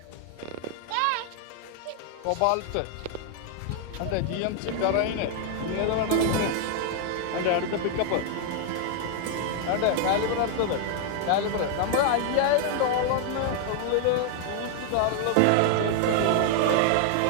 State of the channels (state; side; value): different; both; correlation 0.00